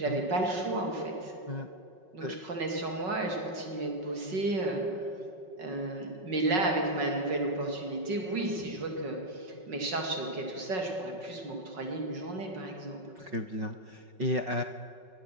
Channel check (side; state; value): left; late; 5.4 ms